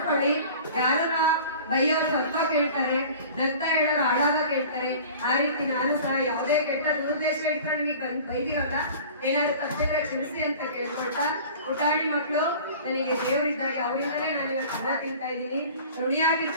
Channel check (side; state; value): both; inverted; correlation -0.43